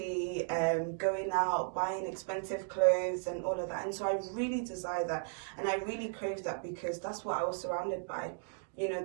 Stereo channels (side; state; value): left; silent; digital silence